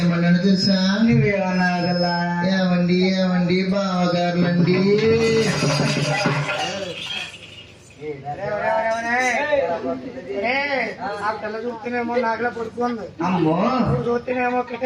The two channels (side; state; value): both; identical; correlation 1.00